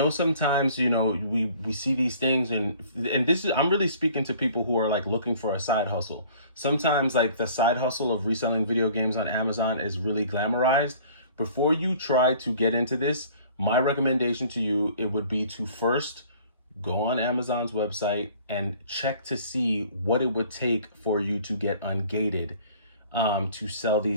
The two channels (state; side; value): inverted; both; correlation -0.52